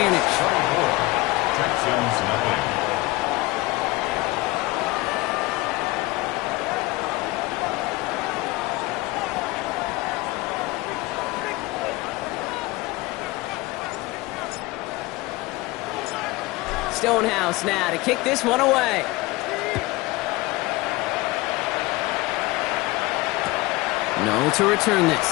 Texans nothing. Stonehouse now to kick this one away. No to return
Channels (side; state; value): right; quieter; 21.2 dB